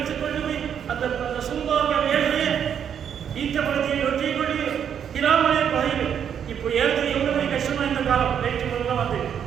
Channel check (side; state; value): left; quieter; 8.4 dB